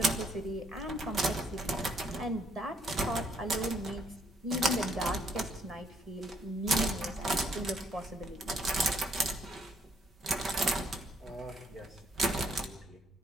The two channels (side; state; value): both; normal; correlation 0.69